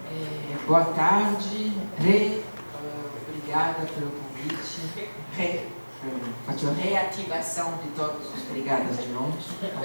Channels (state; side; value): inverted; both; correlation -1.00